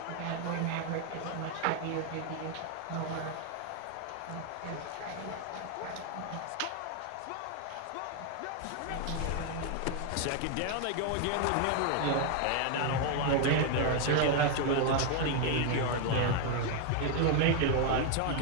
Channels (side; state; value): both; different; correlation 0.01